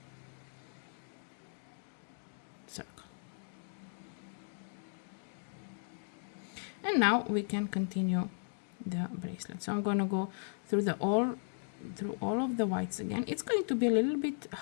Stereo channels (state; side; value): silent; right; digital silence